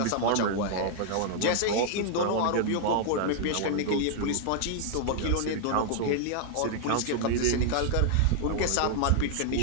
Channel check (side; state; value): both; different; correlation -0.01